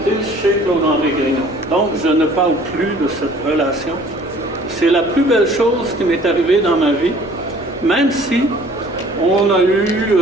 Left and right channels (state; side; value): noise; right; hum, 27 dB below the sound